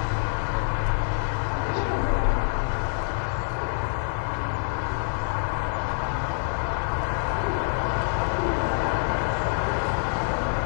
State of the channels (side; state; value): right; silent; digital silence